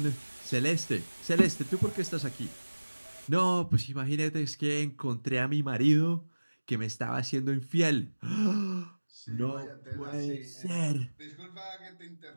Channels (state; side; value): inverted; both; correlation -1.00